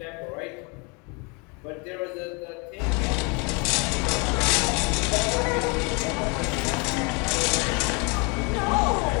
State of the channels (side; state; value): right; quieter; 31.3 dB